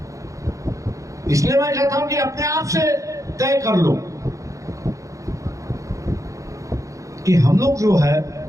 इसलिए मैं कहता हूं कि अपने आप से तय कर लो कि हम लोग जो है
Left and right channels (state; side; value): late; left; 0.16 ms